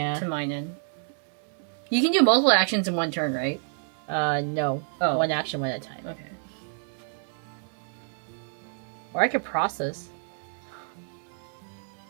to mine in. You can do multiple actions in one turn, right? No. Oh. One action, one at a time. Okay. Or I could process.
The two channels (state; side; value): silent; left; digital silence